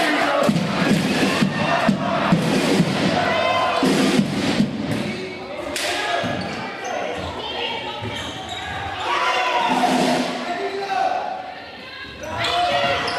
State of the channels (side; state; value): both; identical; correlation 1.00